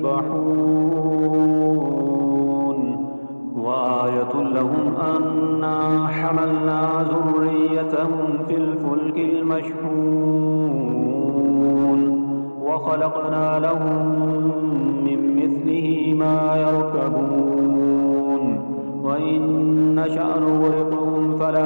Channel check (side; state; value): both; inverted; correlation -1.00